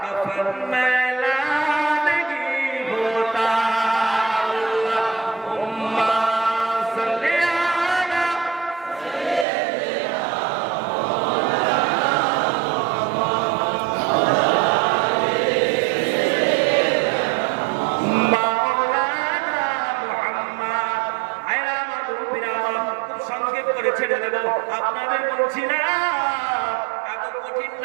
कफन मैला नहीं होता, अल्लाहुम्मा सल्ली अला মাওলানা মুহাম্মদ। আয়রা আমার মুরব্বিরা, খুব সংক্ষেপ করে ছেড়ে দেব, আপনাদের বলছি না। এত কঠিন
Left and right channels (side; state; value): left; drops out; at 9.5 s